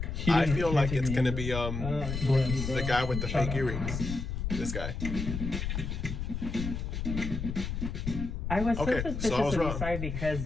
He I didn't- feel he like didn't it's take gonna me be in. the guy with the fake earrings. This guy. I was so Okay, suspicious so I was of wrong. Isai because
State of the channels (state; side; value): noise; left; rumble, 4 dB below the sound